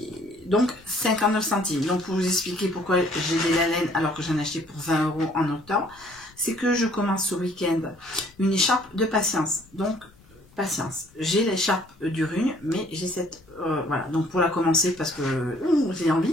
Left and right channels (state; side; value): noise; left; rumble, 27 dB below the sound